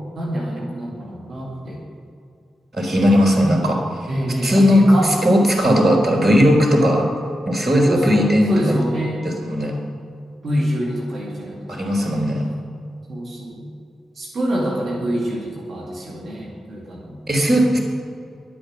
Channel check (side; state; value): both; normal; correlation 0.88